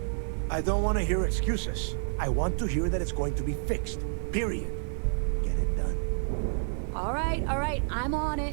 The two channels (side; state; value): left; silent; digital silence